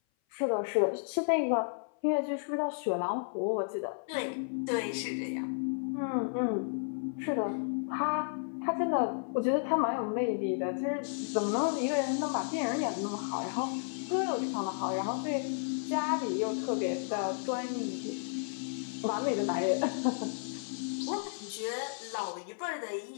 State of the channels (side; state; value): right; silent; 56 dB below the other